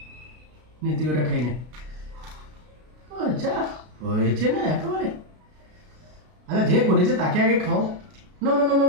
নে, তুই ওটা খাই নে। যা হয়েছে না একেবারে। আচ্ছা যে করেছে তাকে আগে খাও। না না না না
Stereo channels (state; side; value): late; left; 33 ms